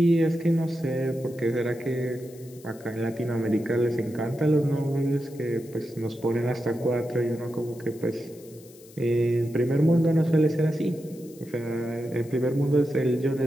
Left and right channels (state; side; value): noise; left; hiss, 23 dB below the sound